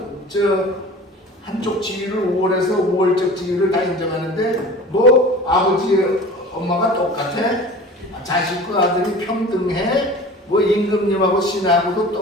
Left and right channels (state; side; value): normal; both; correlation 0.40